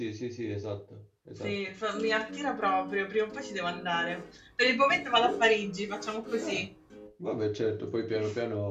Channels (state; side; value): identical; both; correlation 1.00